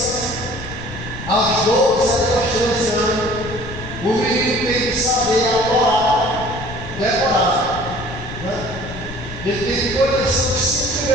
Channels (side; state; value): left; noise; rumble, 11 dB below the sound